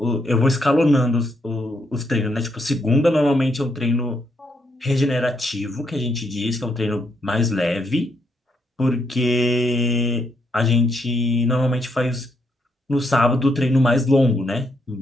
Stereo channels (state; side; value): normal; both; correlation 0.77